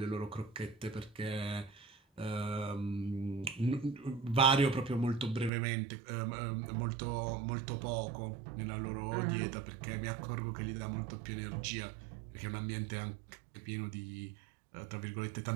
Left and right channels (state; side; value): drops out; left; at 5.5 s